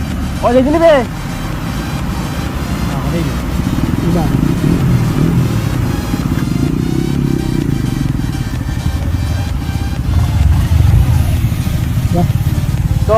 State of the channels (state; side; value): identical; both; correlation 1.00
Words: ও দেখি নিবে तो